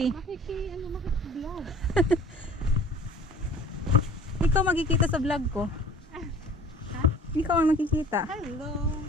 Makiki-vlog. Ikaw makikita sa vlog ko. Ikaw ang nakikita. Hello.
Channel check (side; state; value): both; normal; correlation 0.47